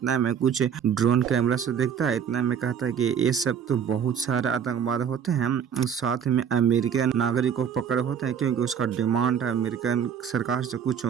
में कुछ ड्रोन कैमरा से देखता है। इतना में कहता है कि ये सब तो बहुत सारे आतंकवाद होते हैं, साथ में अमेरिकन नागरिक को पकड़े होते हैं क्योंकि उसका डिमांड है अमेरिकन सरकार से कुछ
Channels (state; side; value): quieter; left; 7.9 dB